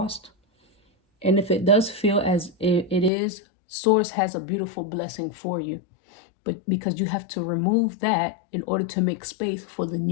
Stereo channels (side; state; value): right; drops out; at 3.1 s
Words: And if it does feel as it is, source has a beautiful blessing for you. But because you have to remove that in order to make space for the